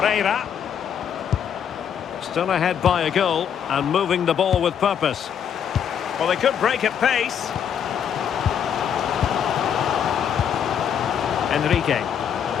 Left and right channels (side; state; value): right; quieter; 8.4 dB